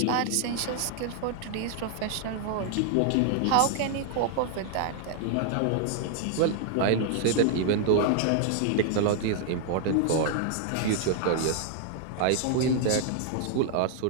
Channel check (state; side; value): different; both; correlation 0.00